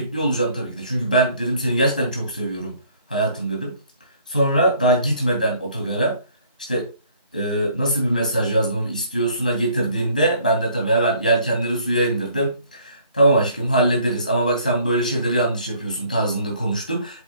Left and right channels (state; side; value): inverted; both; correlation -0.59